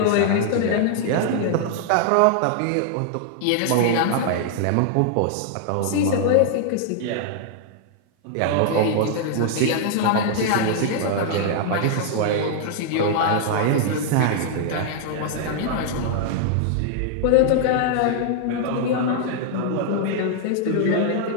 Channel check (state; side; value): different; both; correlation -0.01